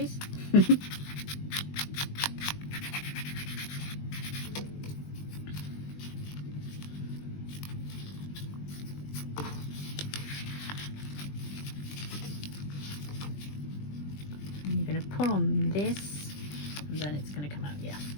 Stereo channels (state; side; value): late; right; 20 ms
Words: And you're going to pull on this, and then it's going to come out. Yeah,